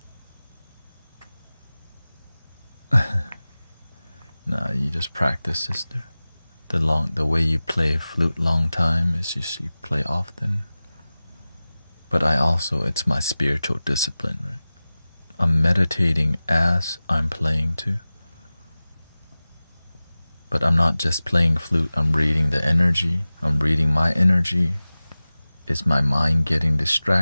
nah, you just practice, sister. The way you play flute long time is just you play often. But it's my spiritual discipline, right? I'm meditating as I'm playing too. But I'm not just playing flute, I'm reading the energy. I'm reading my energy. Is my mind getting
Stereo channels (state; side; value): inverted; both; correlation -0.97